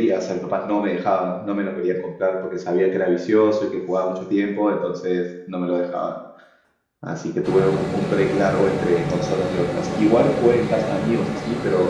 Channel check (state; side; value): identical; both; correlation 1.00